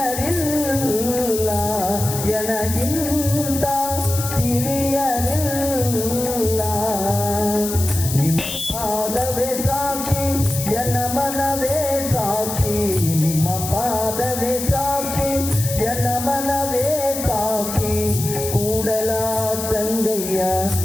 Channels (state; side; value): noise; left; hiss, 6 dB below the sound